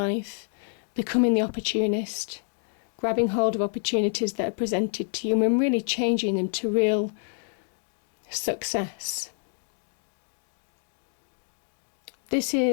becoming the opportunist, grabbing hold of opportunities that are presented to you and really changing them to real success. This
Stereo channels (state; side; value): silent; right; 58 dB below the other